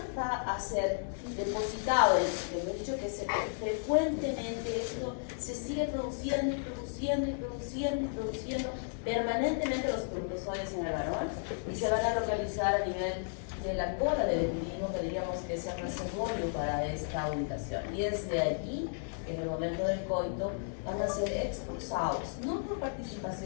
va a ser depositado, hemos dicho que frecuentemente esto se sigue produciendo y produciendo y produciendo y produciendo permanentemente los espermatozoides en el varón y se van a localizar a nivel de la cola del individuo, que diríamos que es el reservorio para esta ubicación. Y es de allí que en el momento del coito van a ser expulsados, no por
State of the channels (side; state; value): right; silent; 55 dB below the other